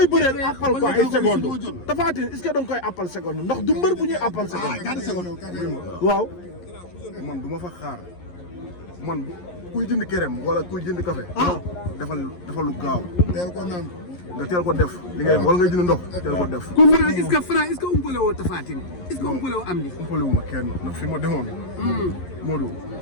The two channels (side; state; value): right; late; 11 ms